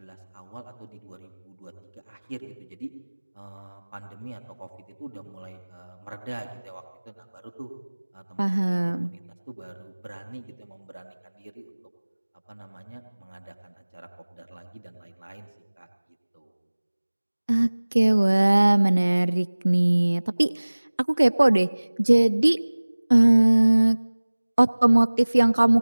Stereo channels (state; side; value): inverted; both; correlation -1.00